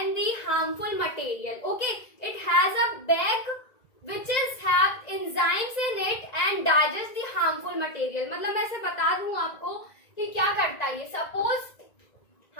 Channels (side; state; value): right; late; 1.9 ms